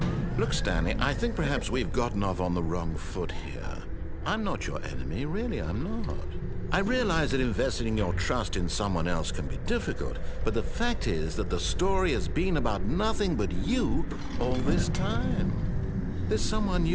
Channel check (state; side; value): identical; both; correlation 1.00